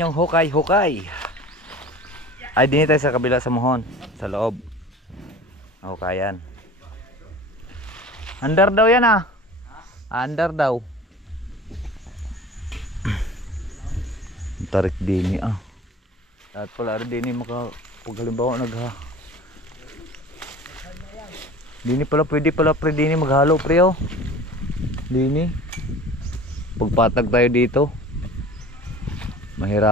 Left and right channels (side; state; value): both; normal; correlation 0.41